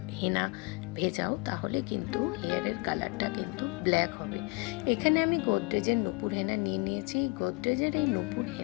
হেনা ভেজাও তাহলে কিন্তু হেয়ারের কালারটা কিন্তু ব্ল্যাক হবে। এখানে আমি গোদরেজের নূপুর হেনা নিয়ে নিয়েছি। গোদরেজের এই নূপুর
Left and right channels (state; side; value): quieter; right; 28.2 dB